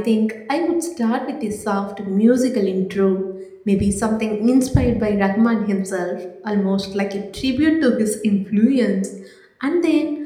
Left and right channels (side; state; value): both; identical; correlation 1.00